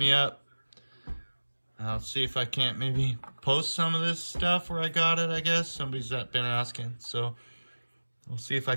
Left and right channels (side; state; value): both; inverted; correlation -1.00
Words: up. I'll see if I can't maybe post some of this stuff where I got it, I guess. Somebody's been asking. So we'll see if